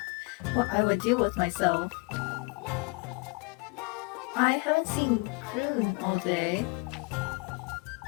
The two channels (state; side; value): quieter; right; 29.0 dB